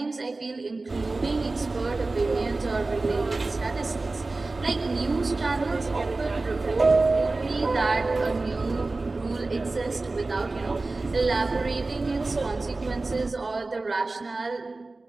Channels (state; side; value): quieter; left; 3.4 dB